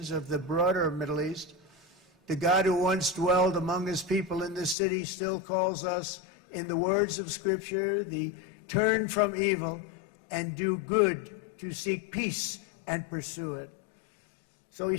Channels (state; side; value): drops out; right; at 4.8 s